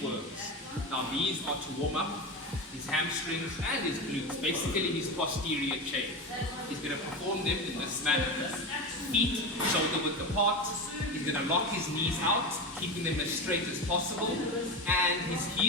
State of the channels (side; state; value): both; normal; correlation 0.22